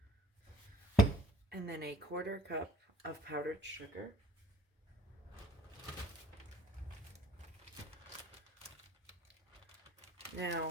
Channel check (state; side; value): normal; both; correlation 0.55